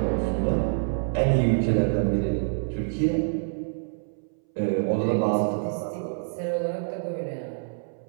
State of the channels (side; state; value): left; silent; 60 dB below the other